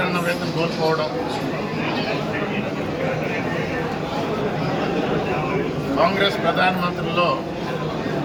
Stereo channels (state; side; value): noise; right; hum, 26 dB below the sound